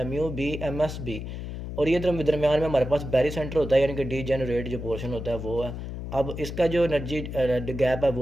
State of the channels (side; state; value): left; noise; hum, 7 dB below the sound